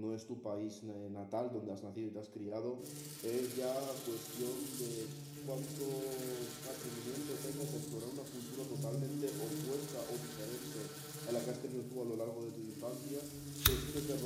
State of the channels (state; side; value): identical; both; correlation 1.00